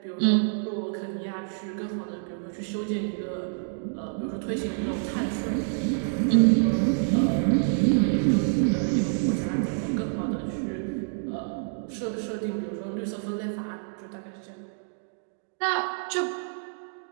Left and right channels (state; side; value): silent; left; digital silence